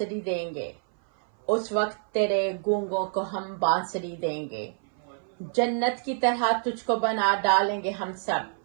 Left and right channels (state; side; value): silent; left; 57 dB below the other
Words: دیں گے، اس وقت تیرے گونگوں کو ہم بانسری دیں گے، جنت کی طرح تجھ کو بنا ڈالیں گے ہم